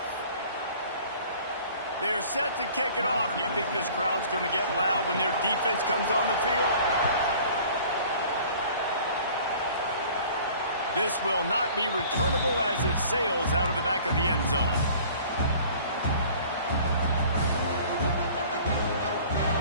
They're set to kick it off. You think this crowd's going to get loud when their defense comes on the field? This will not be returnable as it sails out of the back of the end zone.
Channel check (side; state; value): both; inverted; correlation -0.49